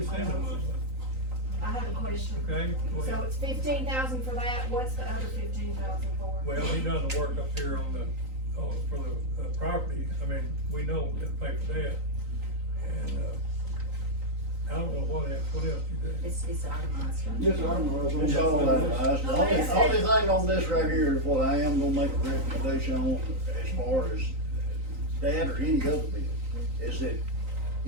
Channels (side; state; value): left; late; 3.9 ms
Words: send them, I have a question. okay? Go So ahead. it's 15,000 for that, what's the other 15,000 for? Well, he done the work up here for the property, I mean, we know we gotta pay for that. And, I don't know what else you did. It's itemized. Yes, I don't know. It's all itemized. The only thing on this right here is what I am gonna make a recommendation on as far as that or any other bill, is that